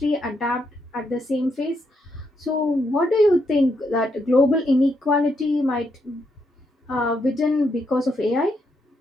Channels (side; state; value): both; normal; correlation 0.78